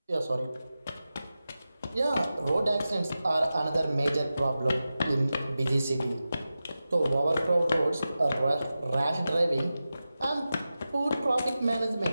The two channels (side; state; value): both; inverted; correlation -0.93